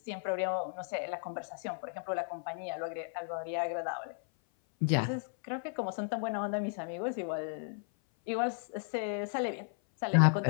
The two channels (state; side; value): silent; right; 55 dB below the other